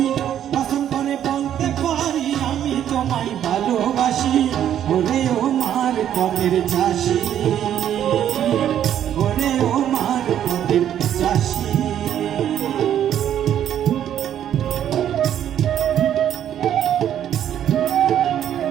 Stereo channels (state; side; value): quieter; left; 10.4 dB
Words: কসম করে বলতে পারি আমি তোমায় ভালোবাসি। ওরে ও মার পথের চাষি, ওরে ও মার পথের চাষি।